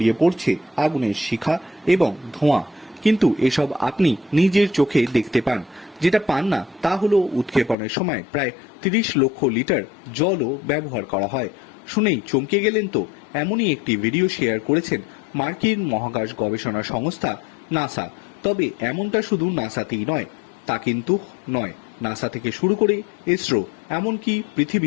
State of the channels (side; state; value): right; drops out; at 7.8 s